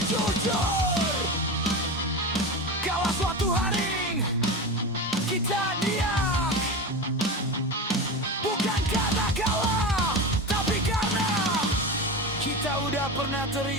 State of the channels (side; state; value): both; normal; correlation 0.24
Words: jujur. Kalau suatu hari kita diam, bukan karena kalah, tapi karena kita udah pernah